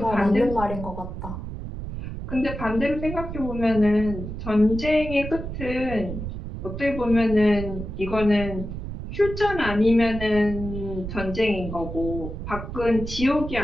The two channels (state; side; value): noise; right; rumble, 8 dB below the sound